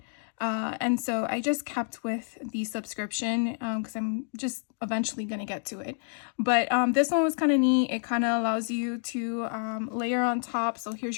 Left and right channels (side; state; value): right; silent; 59 dB below the other